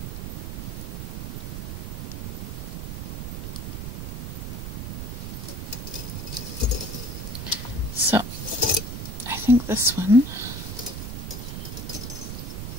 So, I think this one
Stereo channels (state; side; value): noise; right; rumble, 5 dB below the sound